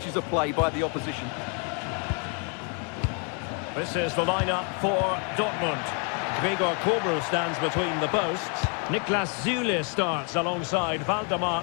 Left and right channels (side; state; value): right; quieter; 38.5 dB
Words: of play by the opposition. This is the lineup for Dortmund. Gregor Kobel stands between the posts. Niklas Süle starts alongside